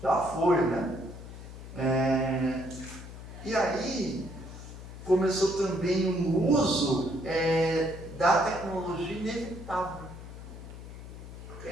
já foi, né? E aí começou também um uso da tecnologia inevitável. Por que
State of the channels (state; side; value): noise; left; hum, 13 dB below the sound